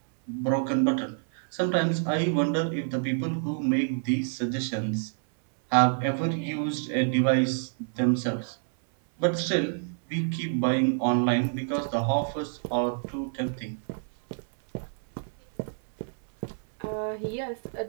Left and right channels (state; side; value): silent; left; 60 dB below the other